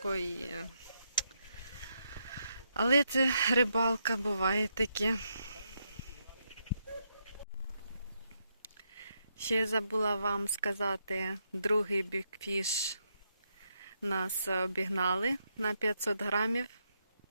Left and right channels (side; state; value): both; inverted; correlation -0.80